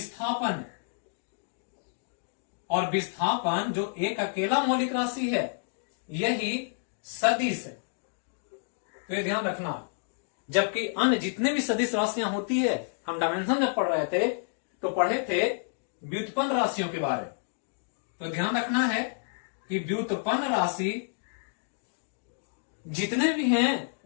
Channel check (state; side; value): silent; right; digital silence